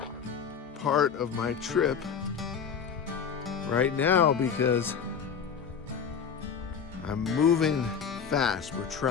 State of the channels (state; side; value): quieter; right; 6.9 dB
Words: part of my trip right now because I'm moving fast. We're